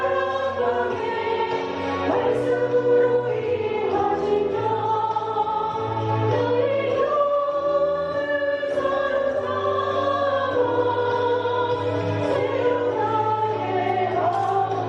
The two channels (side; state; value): both; identical; correlation 1.00